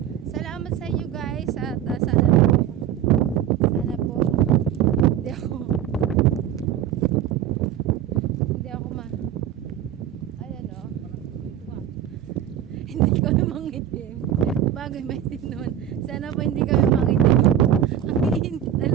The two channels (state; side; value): quieter; left; 10.4 dB